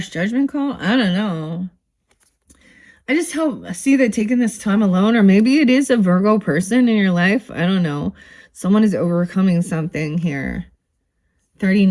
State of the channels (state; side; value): identical; both; correlation 1.00